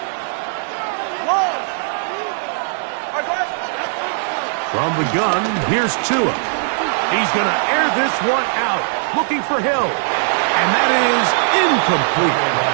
From the gun, here's Tua. He's going to air this one out. Looking for Hill. And that is incomplete.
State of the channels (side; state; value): left; silent; digital silence